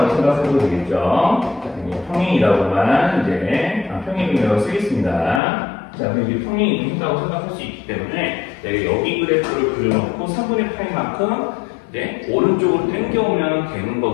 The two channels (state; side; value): drops out; right; at 5.4 s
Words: 생각해도 되겠죠. 평행이라고만 이제 평행이라고 쓰겠습니다. 자, 그럼 이제 평행 이동했다고 생각할 수 있기 때문에 내가 여기 그래프를 그려놓고 3분의 파이만큼 오른쪽으로 당겨오면 되는